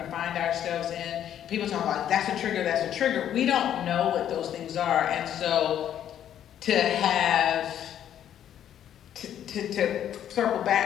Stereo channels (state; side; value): quieter; right; 10.3 dB